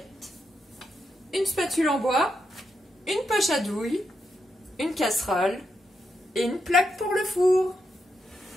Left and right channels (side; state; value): both; normal; correlation 0.83